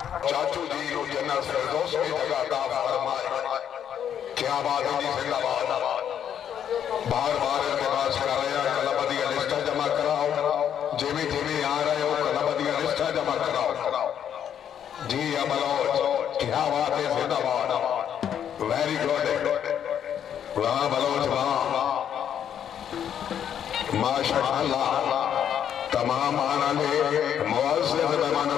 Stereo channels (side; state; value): right; quieter; 9.2 dB